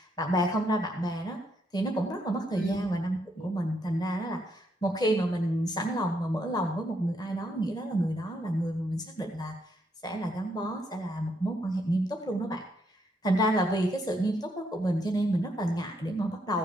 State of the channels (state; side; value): normal; both; correlation 0.75